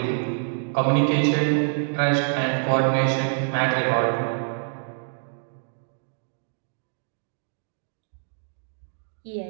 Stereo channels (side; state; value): left; silent; digital silence